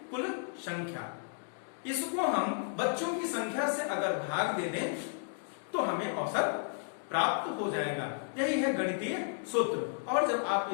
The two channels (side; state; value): right; silent; digital silence